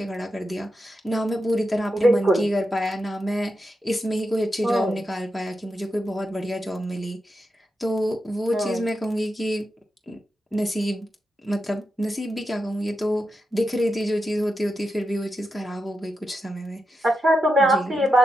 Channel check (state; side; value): normal; both; correlation 0.88